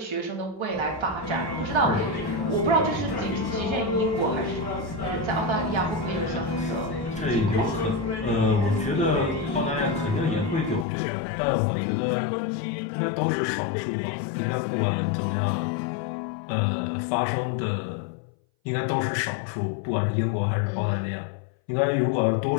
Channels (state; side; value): drops out; right; at 10.9 s